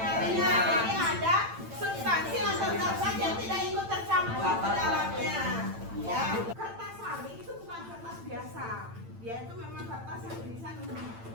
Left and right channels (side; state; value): left; late; 8.9 ms